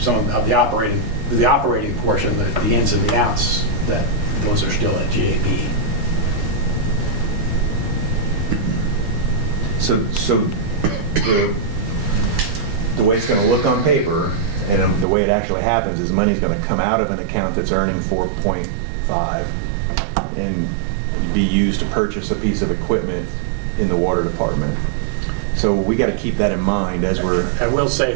of the operating portion, the ins and the outs, those are still at GAB. So the way it's going to look on paper, and the way it actually happens, is money's going to come out of an account that's earning 4.5 and be used to purchase a piece of equipment in the water department. So we got to keep that in mind as we're. I will say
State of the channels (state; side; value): drops out; left; at 15.1 s